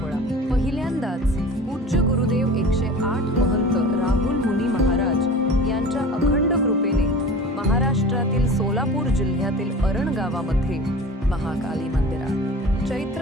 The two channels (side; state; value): both; normal; correlation 0.38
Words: पहिल्यांदाच पूज्य गुरुदेव 108 महंत राहुल मुनी महाराज यांच्या अखंड कृपेने महाराष्ट्रातील सोलापूर जिल्ह्यातील अरण गावामध्ये महाकाली मंदिरात